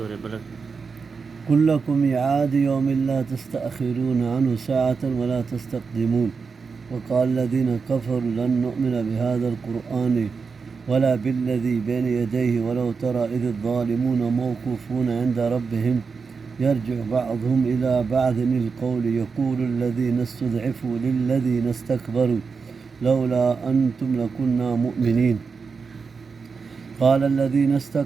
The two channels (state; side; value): quieter; left; 5.1 dB